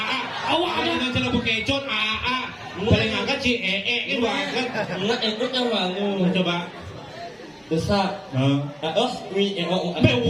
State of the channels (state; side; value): identical; both; correlation 1.00